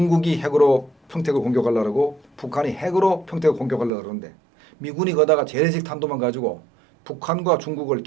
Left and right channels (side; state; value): left; drops out; at 3.9 s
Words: 핵으로 평택을 공격하려고 북한이 핵으로 평택을 공격하려고 그러는데 미군이 거다가 재래식 탄두만 가지고 북한과 중국을